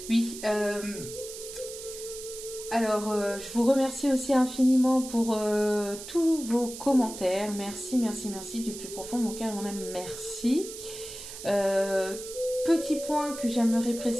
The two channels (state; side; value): noise; right; hiss, 11 dB below the sound